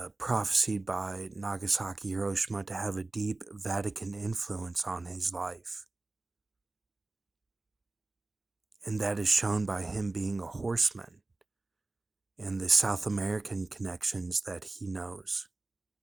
prophesied by Nagasaki, Hiroshima to have a deep Vatican influence on his life. And that is shown by him being a horseman and the South American connections that he knows,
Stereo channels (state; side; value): quieter; left; 3.1 dB